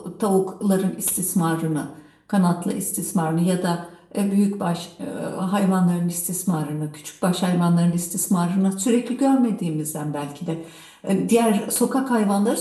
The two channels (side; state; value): both; identical; correlation 1.00